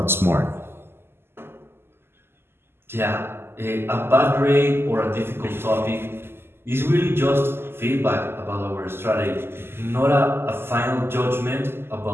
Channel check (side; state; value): left; late; 0.12 ms